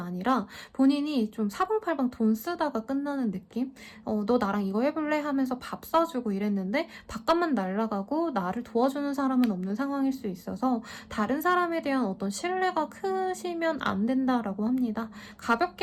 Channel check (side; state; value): both; identical; correlation 1.00